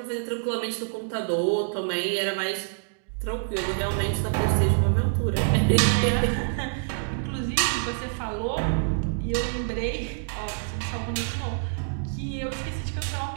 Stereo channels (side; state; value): left; silent; digital silence